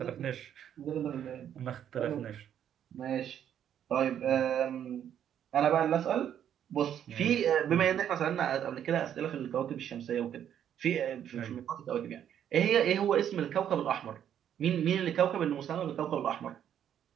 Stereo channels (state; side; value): quieter; left; 9.7 dB